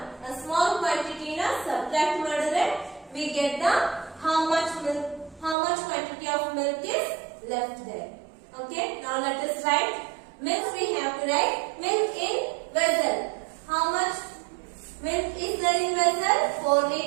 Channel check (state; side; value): drops out; left; at 5.6 s